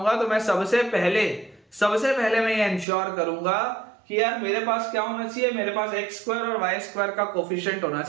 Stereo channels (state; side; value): drops out; left; at 2.9 s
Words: तो मैं सबसे पहले मैं ये इंश्योर करूंगा कि यार मेरे पास क्या होना चाहिए, मेरे पास एक्स स्क्वायर और वाई स्क्वायर का कोफिशिएंट होना